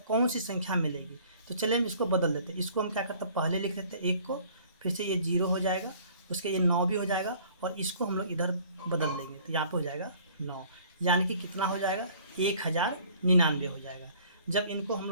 कौन सी संख्या मिलेगी। तो चलिए हम इसको बदल देते हैं। इसको हम क्या करते हैं, पहले लिख देते हैं 1 को, फिर से ये 0 हो जाएगा, उसके ये 9 भी हो जाएगा, और इसको हम लोग इधर बदल देंगे तो यहाँ पे हो जाएगा 9। यानी कि कितना हो जाएगा, 1099 हो जाएगा। जब इनको हम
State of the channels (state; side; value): inverted; both; correlation -0.54